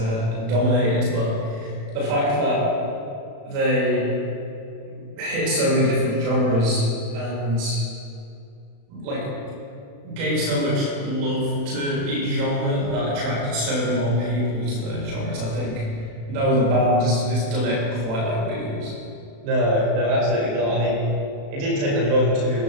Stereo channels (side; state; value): left; late; 35 ms